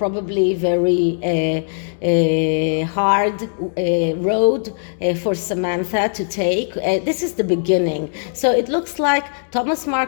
very hard road for Samantha to take. This is the beginning. So it looks like Thomas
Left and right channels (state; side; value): silent; right; digital silence